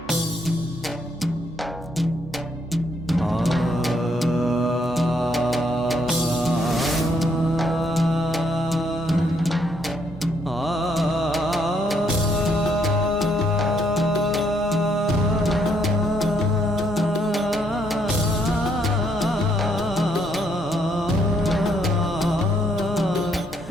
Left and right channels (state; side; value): noise; right; hum, 24 dB below the sound